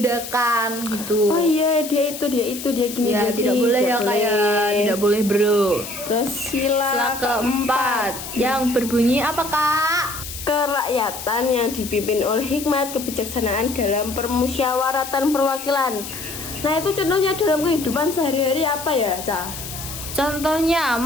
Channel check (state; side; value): noise; left; hiss, 10 dB below the sound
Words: gitu. Oh iya, dia gini. Ya, tidak boleh ya, Kak ya. Tidak boleh, bro. Terus Sila keempat yang berbunyi apa, Kak? kerakyatan yang dipimpin oleh hikmat kebijaksanaan dalam permusyawaratan perwakilan. Nah, itu contohnya dalam kehidupan sehari-hari apa ya, Ca? Contohnya